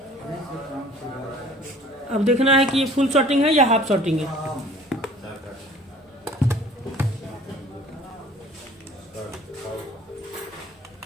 अब देखना है कि ये फुल शॉर्टिंग है या हाफ शॉर्टिंग है।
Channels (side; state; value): both; normal; correlation 0.50